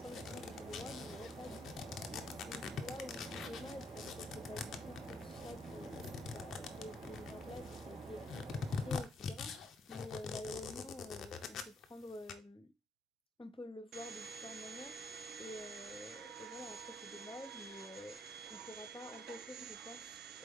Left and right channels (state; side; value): normal; both; correlation 0.71